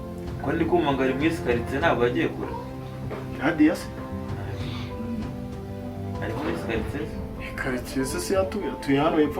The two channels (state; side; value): identical; both; correlation 1.00